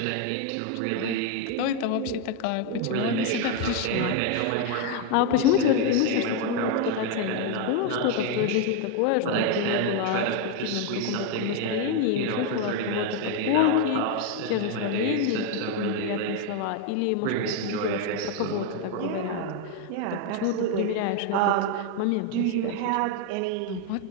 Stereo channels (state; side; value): different; both; correlation 0.01